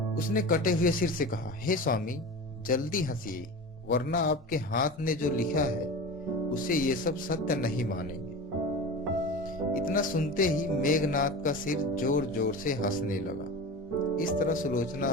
उसने कटे हुए सिर से कहा, हे स्वामी, जल्दी हंसिए, वरना आपके हाथ ने जो लिखा है उसे ये सब सत्य नहीं मानेंगे। इतना सुनते ही मेघनाद का सिर जोर जोर से हंसने लगा। इस तरह सुलोचना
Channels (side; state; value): both; normal; correlation 0.30